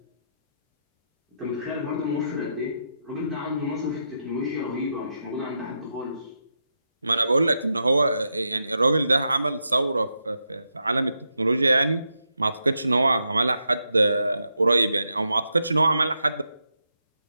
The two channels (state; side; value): inverted; both; correlation -0.84